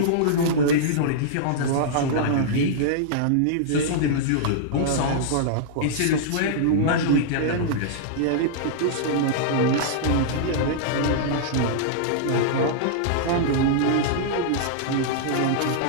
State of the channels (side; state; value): both; different; correlation -0.02